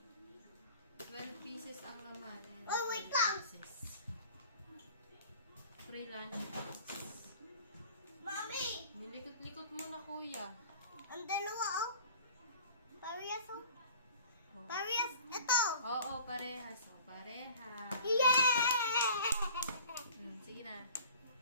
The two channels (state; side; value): inverted; both; correlation -0.47